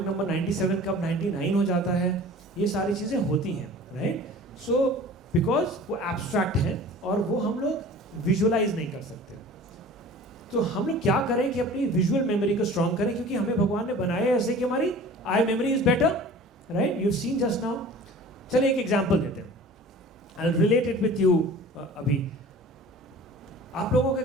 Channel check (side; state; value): both; normal; correlation 0.43